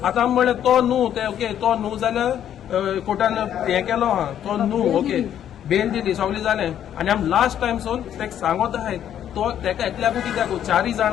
आतां आमी म्हणलें तो न्हू ते ओके तो न्हू जाल्यार कोर्टान हें केलो आहा तो न्हू ओके बेल दिली सगळें जालें. आनी आमी लास्ट टायम सोन तेका सांगत आहाय तो तेका एकल्याकूच कित्याक 4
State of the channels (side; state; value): right; quieter; 10.2 dB